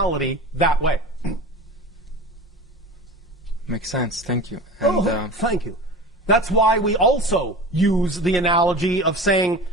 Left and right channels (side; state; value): both; normal; correlation 0.34